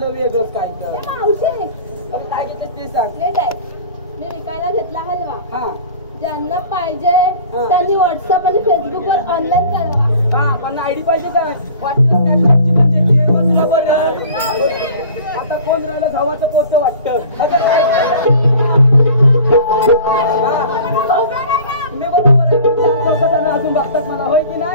वेगळंच काय तर ए मावशी काय घेतोय ते सांग नीट ऐक. मी विकायला घेतला हलवा. हा ज्यांना पाहिजे त्यांनी व्हॉट्सअप आणि फेसबुक वर ऑनलाईन कळवा. हा पण आयडी पाहिजे काय वाटलं स्नॅपचॅटची पण देते मग तुला बरं आता कोण राहिलं भावाचं पोतं वाटतं मी बरोबर आहे लोक जण अजून बघतात मला होय की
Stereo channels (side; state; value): both; inverted; correlation -0.44